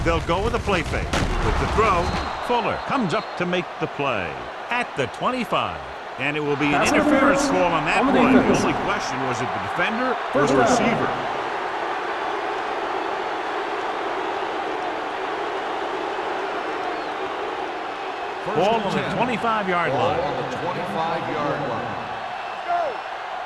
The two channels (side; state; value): both; identical; correlation 1.00